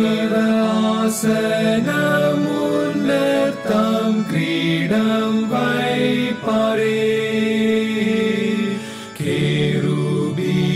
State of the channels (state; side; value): identical; both; correlation 1.00